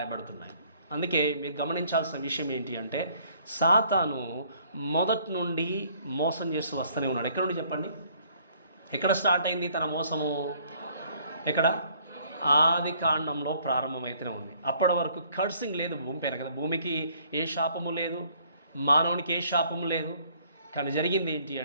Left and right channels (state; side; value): inverted; both; correlation -0.62